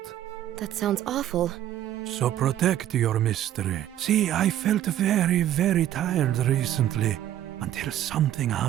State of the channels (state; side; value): quieter; left; 11.9 dB